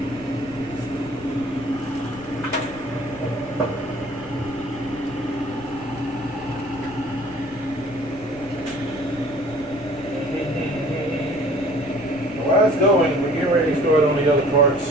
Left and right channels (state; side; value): noise; left; rumble, 19 dB below the sound